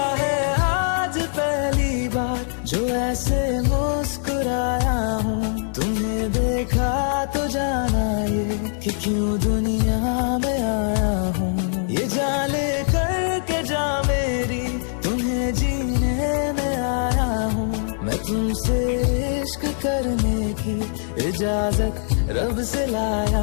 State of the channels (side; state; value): right; silent; digital silence